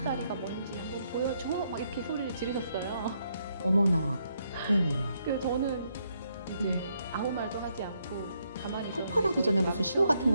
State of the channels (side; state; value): both; inverted; correlation -0.76